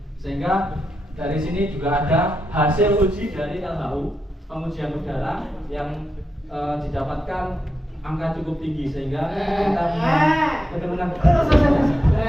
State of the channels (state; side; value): normal; both; correlation 0.86